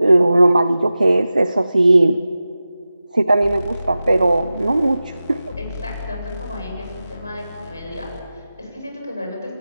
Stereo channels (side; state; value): both; inverted; correlation -0.94